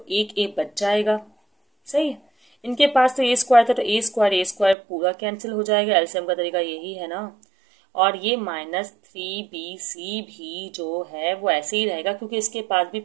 एक ए बच जाएगा, सही है। इनके पास तो ए स्क्वायर था, तो ए स्क्वायर पूरा कैंसिल हो जाएगा, एलसीएम का तरीका यही है ना। और ये माइनस 3bc भी जो है वो ऐसे ही रहेगा, क्योंकि इसके पास भी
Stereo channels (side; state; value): left; drops out; at 4.8 s